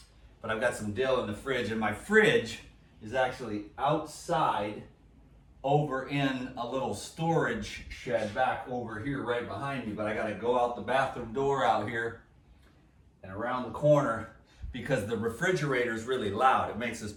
But I've got some dill in the fridge, and my fridge is actually outside over in a little storage shed back over here right behind me. But I gotta go out the bathroom door out here and around the corner because the refrigerator is really loud. It makes this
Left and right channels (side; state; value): both; identical; correlation 1.00